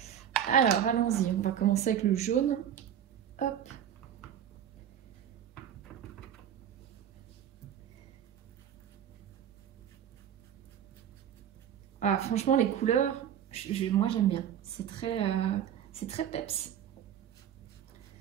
Alors allons-y, on va commencer avec le jaune. Hop. Ah, franchement les couleurs, moi j'aime bien. C'est très peps.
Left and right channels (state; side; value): quieter; left; 9.6 dB